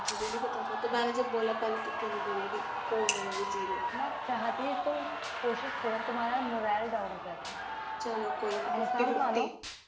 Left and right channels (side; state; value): both; identical; correlation 1.00